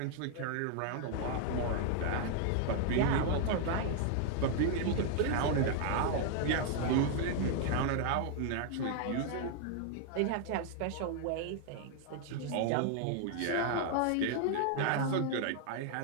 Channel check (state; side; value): different; both; correlation 0.00